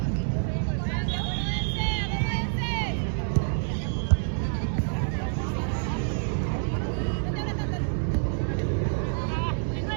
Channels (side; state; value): left; silent; digital silence